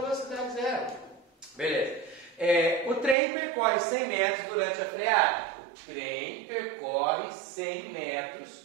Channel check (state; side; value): drops out; left; at 3.2 s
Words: zero. Beleza. O trem percorre 100 metros durante a freada. O trem percorre 100 metros